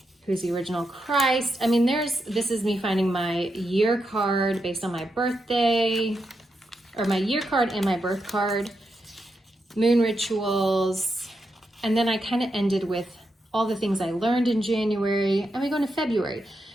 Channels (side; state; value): both; normal; correlation 0.85